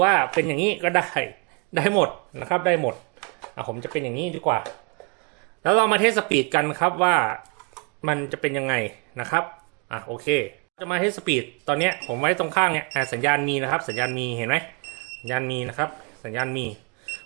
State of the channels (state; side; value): quieter; left; 31.7 dB